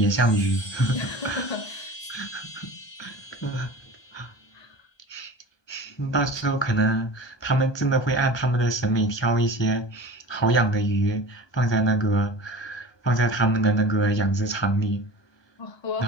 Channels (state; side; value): late; right; 1.2 ms